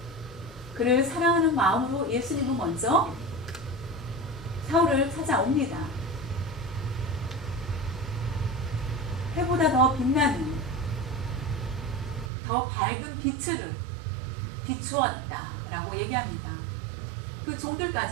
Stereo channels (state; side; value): drops out; left; at 12.3 s